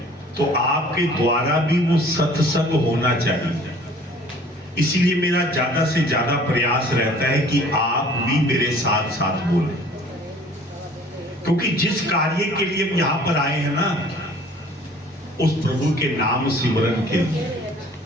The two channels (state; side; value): normal; both; correlation 0.51